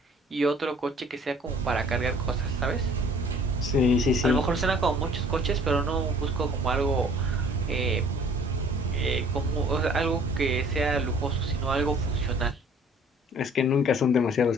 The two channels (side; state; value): both; normal; correlation 0.53